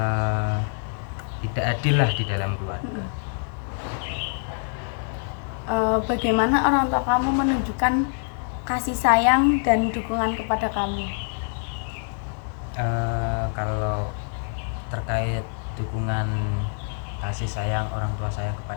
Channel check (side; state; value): right; silent; 57 dB below the other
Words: tidak adil lah di dalam keluarga. Bagaimana orang tua kamu menunjukkan kasih sayang dan dukungan kepada kamu? Kalau terkait dukungan kasih sayang orang tua saya